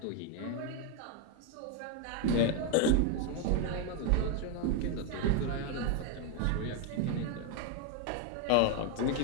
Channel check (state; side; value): different; both; correlation 0.01